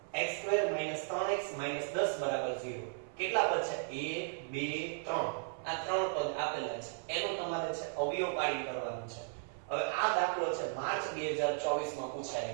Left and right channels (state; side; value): silent; left; 54 dB below the other